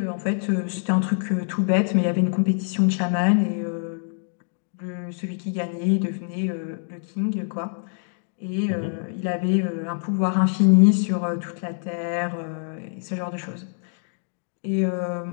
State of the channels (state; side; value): silent; right; 62 dB below the other